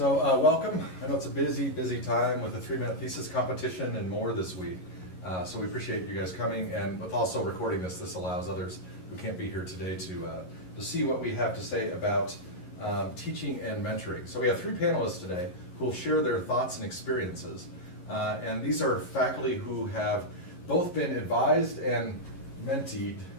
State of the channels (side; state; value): right; late; 11 ms